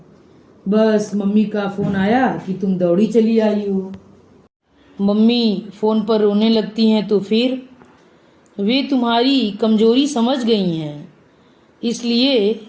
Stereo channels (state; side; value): identical; both; correlation 1.00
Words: बस मम्मी का फोन आया कि तुम दौड़ी चली आई हो। मम्मी फोन पर रोने लगती हैं तो फिर? वे तुम्हारी कमजोरी समझ गई हैं, इसलिए